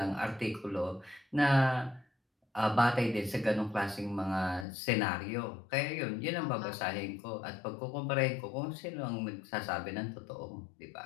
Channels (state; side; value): drops out; right; at 4.7 s